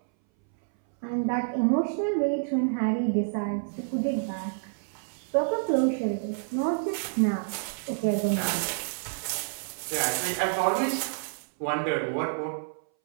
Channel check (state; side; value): silent; left; 59 dB below the other